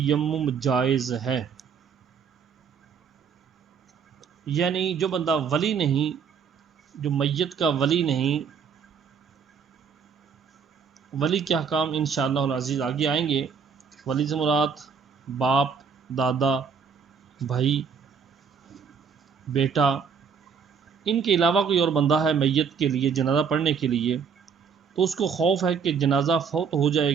جائز ہے۔ یعنی جو بندہ ولی نہیں، جو میت کا ولی نہیں، ولی کے احکام انشاءاللہ العزیز آگے آئیں گے۔ ولی سے مراد باپ، دادا، بھائی، بیٹا، ان کے علاوہ کوئی اور بندہ ہے میت کے لیے جنازہ پڑھنے کے لیے، تو اس کو خوف ہے کہ جنازہ فوت ہو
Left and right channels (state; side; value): quieter; left; 6.3 dB